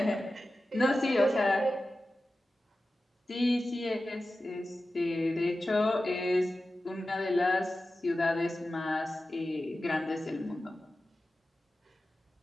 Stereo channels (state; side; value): normal; both; correlation 0.94